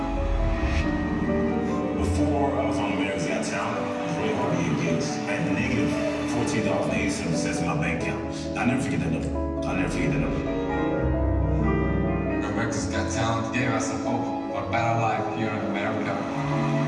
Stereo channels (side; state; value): both; identical; correlation 1.00